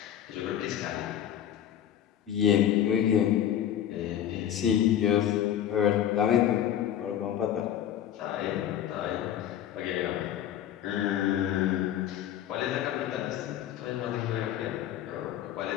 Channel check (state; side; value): quieter; right; 10.6 dB